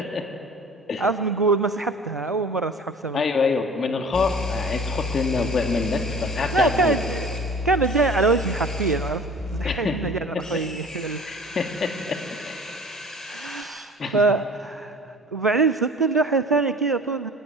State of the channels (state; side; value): normal; both; correlation 0.44